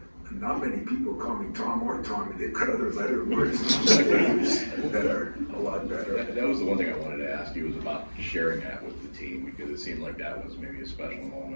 Not many people call me Tom or Tommy. They've got other letter words that are a lot better. That was the one thing I wanted to ask you, was about sharing that with the team, because it seemed like that was maybe a special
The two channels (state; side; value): inverted; both; correlation -1.00